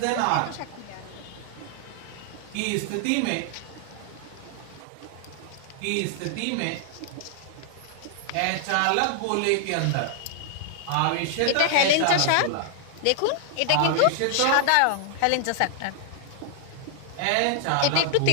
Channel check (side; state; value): both; different; correlation 0.00